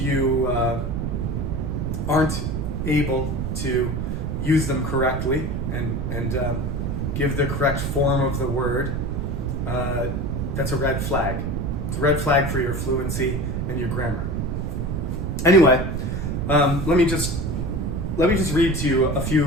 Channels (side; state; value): right; noise; rumble, 1 dB below the sound